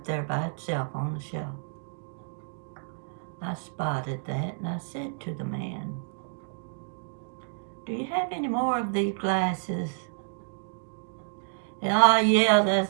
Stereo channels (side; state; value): left; silent; digital silence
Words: there by itself on the shelf. I spotted that and I said to the man, "Do you have any more of these glasses?" "Oh, yeah,